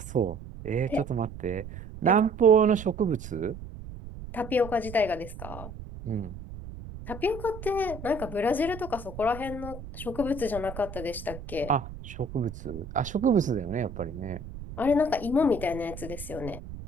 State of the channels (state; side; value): noise; right; rumble, 12 dB below the sound